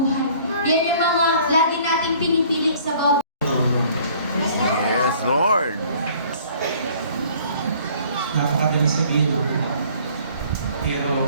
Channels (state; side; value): inverted; both; correlation -0.55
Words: Yan yung mga lagi nating pinipili sa bawat. Yes, Lord. Napakadali sabihin,